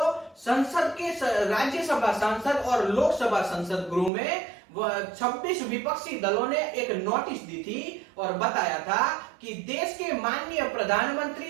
संसद के राज्यसभा सांसद और लोकसभा संसद गृह में 26 विपक्षी दलों ने एक नोटिस दी थी और बताया था कि देश के माननीय प्रधानमंत्री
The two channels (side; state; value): left; drops out; at 4.1 s